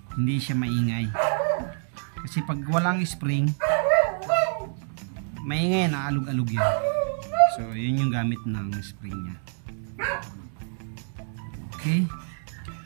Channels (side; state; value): left; silent; digital silence